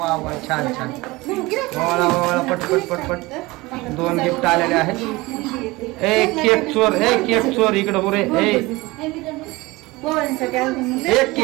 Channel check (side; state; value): left; quieter; 21.7 dB